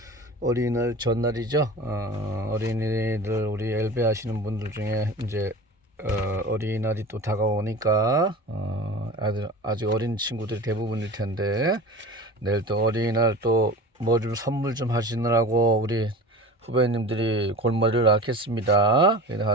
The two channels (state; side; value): normal; both; correlation 0.35